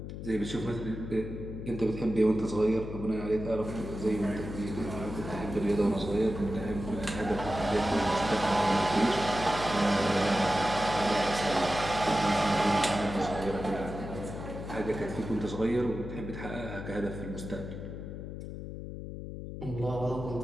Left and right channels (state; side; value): noise; left; hum, 8 dB below the sound